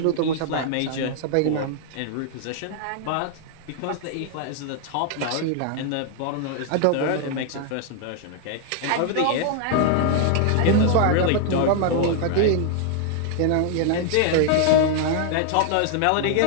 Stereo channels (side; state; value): both; different; correlation 0.00